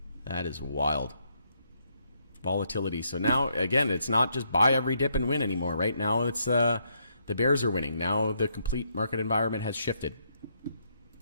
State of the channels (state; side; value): inverted; both; correlation -0.74